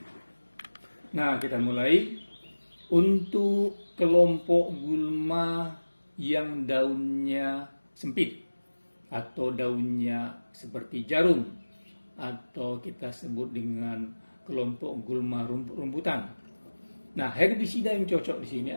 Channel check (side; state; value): both; inverted; correlation -1.00